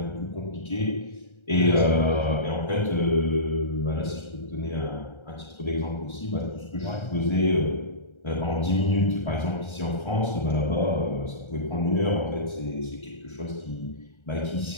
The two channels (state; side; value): late; right; 1.3 ms